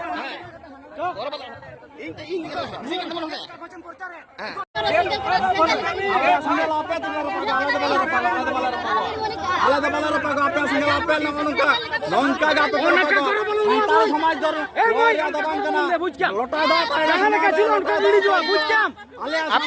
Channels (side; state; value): both; identical; correlation 1.00